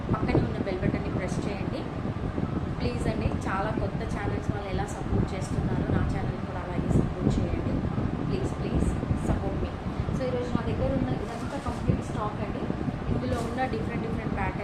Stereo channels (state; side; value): identical; both; correlation 1.00